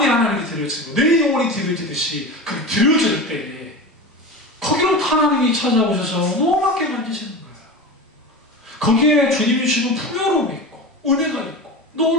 하나님께 드려지고 내 영혼이 드려지듯이 그 드려질 때에 거기로부터 하나님이 찾아오셔서 노랗게 만지시는 거예요. 거기에 주님이 주시는 풍요로움이 있고 은혜가 있고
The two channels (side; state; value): both; normal; correlation 0.28